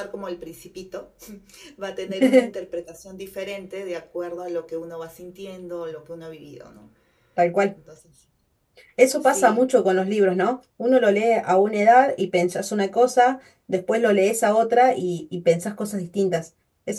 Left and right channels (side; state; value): both; identical; correlation 1.00